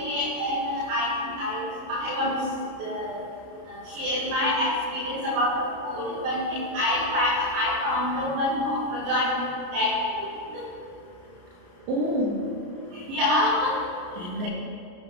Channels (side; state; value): left; late; 33 ms